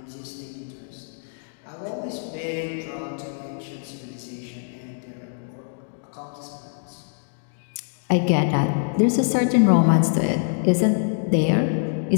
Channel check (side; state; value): right; silent; digital silence